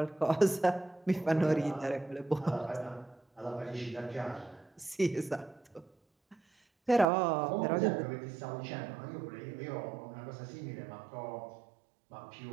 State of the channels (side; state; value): left; drops out; at 7.1 s